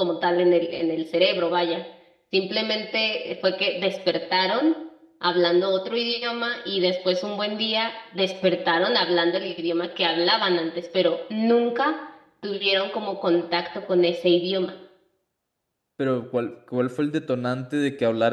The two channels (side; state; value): both; identical; correlation 1.00